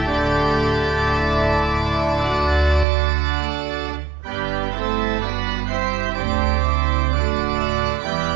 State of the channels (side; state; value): left; drops out; at 2.9 s